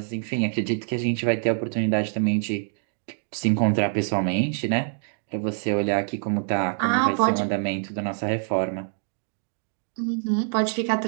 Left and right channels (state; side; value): silent; left; digital silence